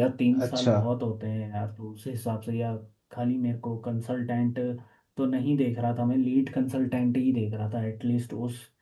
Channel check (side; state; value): both; identical; correlation 1.00